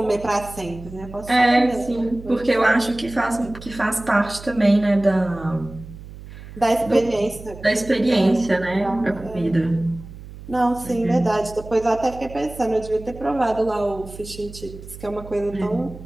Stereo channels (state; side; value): noise; right; hum, 15 dB below the sound